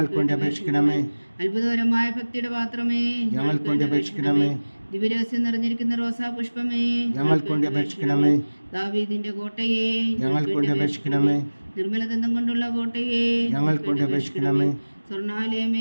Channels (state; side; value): inverted; both; correlation -1.00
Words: വേണ്ടി അപേക്ഷിക്കണമേ. അത്ഭുതകരമായ ഭക്തിയുടെ പാത്രമേ, ഞങ്ങൾക്ക് വേണ്ടി അപേക്ഷിക്കണമേ. ദിവ്യരഹസ്യം നിറഞ്ഞിരിക്കുന്ന റോസാ പുഷ്പമേ, ഞങ്ങൾക്ക് വേണ്ടി അപേക്ഷിക്കണമേ. ദാവീദിന്റെ കോട്ടയെ, ഞങ്ങൾക്ക് വേണ്ടി അപേക്ഷിക്കണമേ. നിർമ്മലദന്തം കൊണ്ടുള്ള കോട്ടയെ ഞങ്ങൾക്ക് വേണ്ടി അപേക്ഷിക്കണമേ.